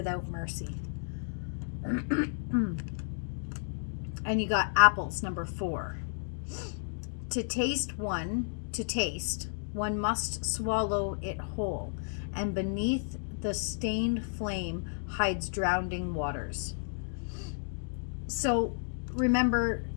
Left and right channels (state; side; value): silent; right; digital silence